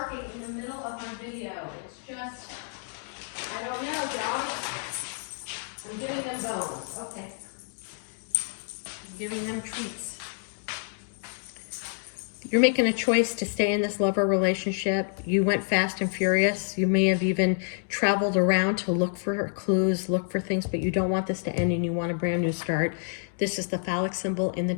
in the middle of my video? It's just, I don't know, dog. I'm giving them bones. Okay. I'm giving them treats. You're making a choice to stay in this lover relationship. You went fast and furious. You may have even traveled around to look for clues, look for things, but you don't want this to end and you want a brand new start. This is the phallic symbol in the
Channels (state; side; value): silent; right; digital silence